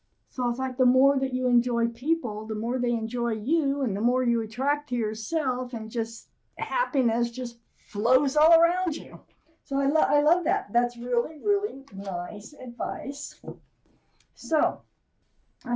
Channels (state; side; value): identical; both; correlation 1.00